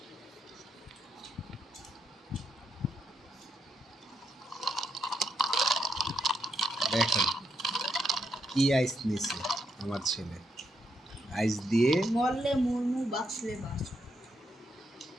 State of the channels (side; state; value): both; normal; correlation 0.79